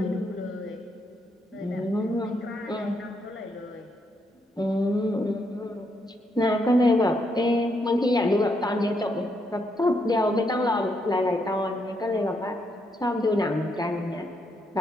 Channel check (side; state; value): both; normal; correlation 0.77